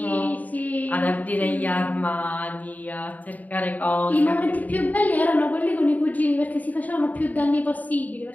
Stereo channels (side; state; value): right; late; 0.076 ms